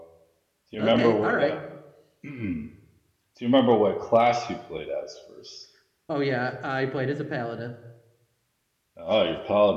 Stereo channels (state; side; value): identical; both; correlation 1.00